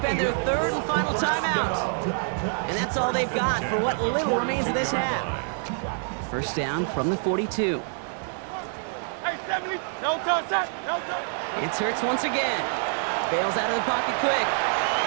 their third and final timeout. And that's all they've got for what little remains of this half. First down from the 42. It's Hurts once again. Bails out of the pocket quick.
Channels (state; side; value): silent; left; 61 dB below the other